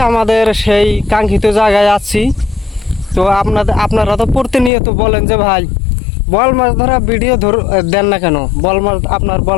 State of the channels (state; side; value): drops out; right; at 4.7 s